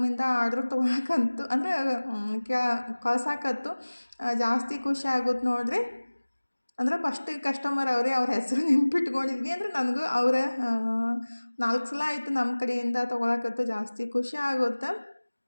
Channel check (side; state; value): both; inverted; correlation -1.00